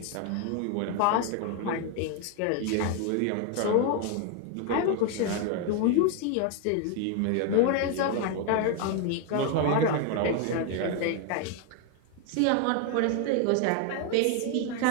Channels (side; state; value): both; different; correlation 0.01